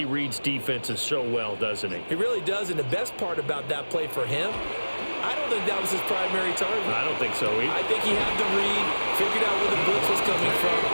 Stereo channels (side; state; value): both; inverted; correlation -1.00